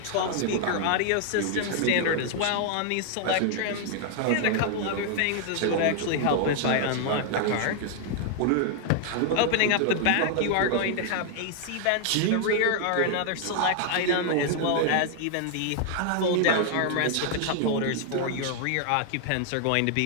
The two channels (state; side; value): different; both; correlation 0.00